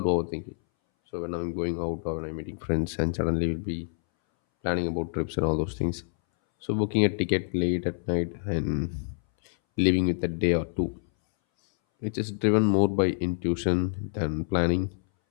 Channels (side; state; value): right; silent; 60 dB below the other